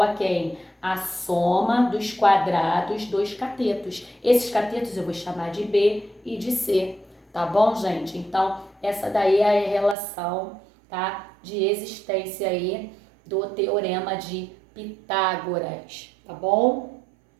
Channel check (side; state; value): left; drops out; at 10.0 s